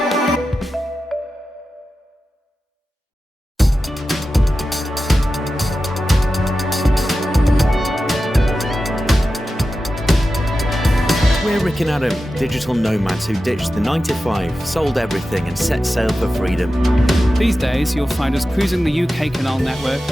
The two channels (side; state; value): both; normal; correlation 0.93